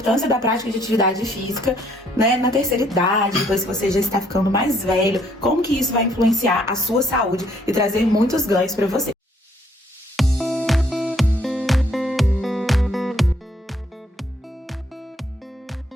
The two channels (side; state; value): both; normal; correlation 0.66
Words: da prática de atividade física, né, na terceira idade, depois que você já está ficando mais velho, como que isso vai influenciar a sua saúde e trazer muitos ganhos para você.